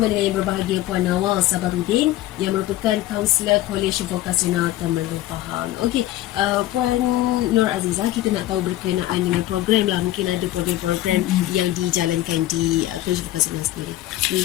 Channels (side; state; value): right; quieter; 15.2 dB